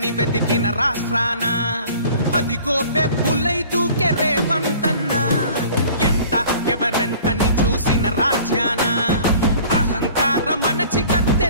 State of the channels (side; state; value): both; inverted; correlation -0.48